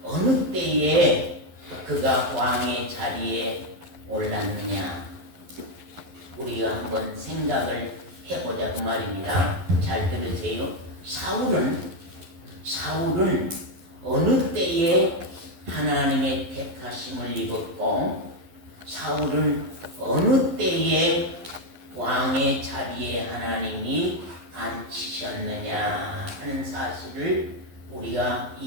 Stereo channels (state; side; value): late; left; 11 ms